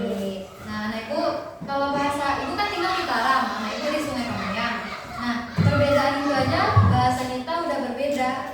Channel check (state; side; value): identical; both; correlation 1.00